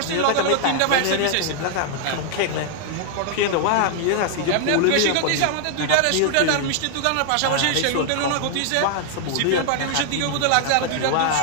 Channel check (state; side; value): different; both; correlation 0.00